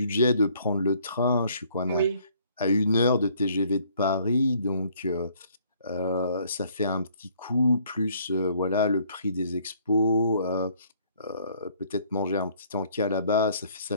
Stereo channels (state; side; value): inverted; both; correlation -0.62